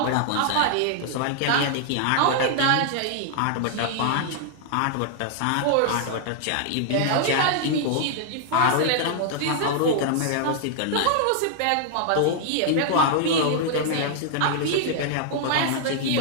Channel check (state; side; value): different; both; correlation -0.01